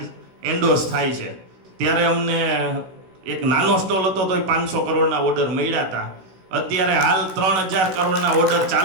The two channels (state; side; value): late; left; 16 ms